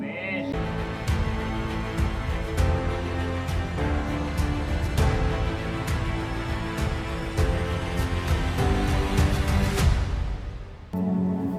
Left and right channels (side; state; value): both; identical; correlation 1.00